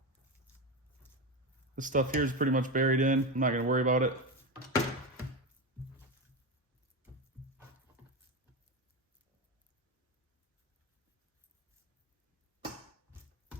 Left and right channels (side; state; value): both; normal; correlation 0.17